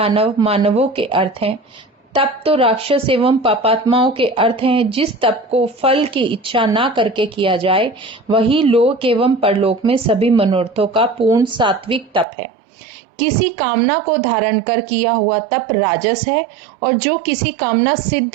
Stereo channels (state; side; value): drops out; left; at 12.2 s